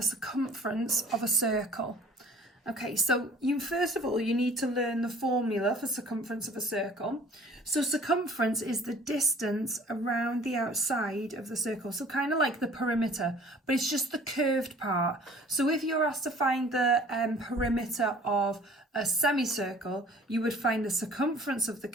circumference of a circle. Okay, so first of all, you need to learn the formula for circumference of a circle. So circumference is the distance around the outside of the circle. So kind of like the perimeter, but it's just the curved part. So if you're asked to find the perimeter of a semicircle, you would find the circumference of the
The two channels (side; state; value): both; normal; correlation 0.51